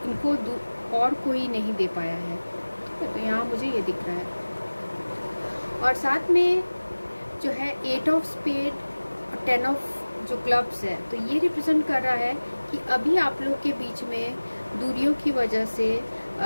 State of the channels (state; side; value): inverted; both; correlation -1.00